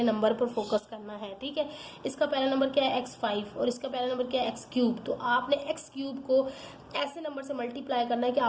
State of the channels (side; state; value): both; identical; correlation 1.00